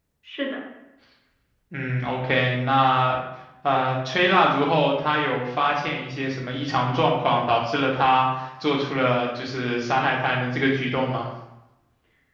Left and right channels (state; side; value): identical; both; correlation 1.00